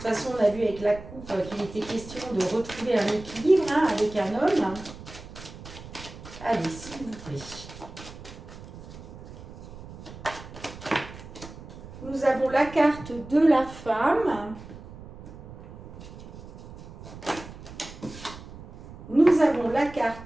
façon, on a vu avec la coupe qu'il était question de retrouver un équilibre, hein, avec un homme. Allez, s'il vous plaît. Nous avons la carte de la femme. Nous avons la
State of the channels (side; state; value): right; noise; rumble, 15 dB below the sound